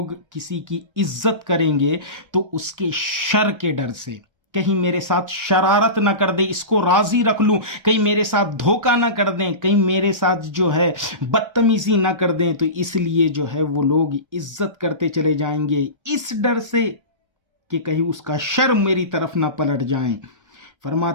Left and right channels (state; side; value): late; left; 1.3 ms